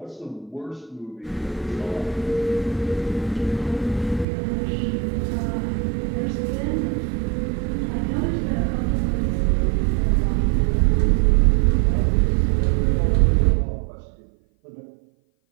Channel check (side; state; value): left; drops out; at 4.2 s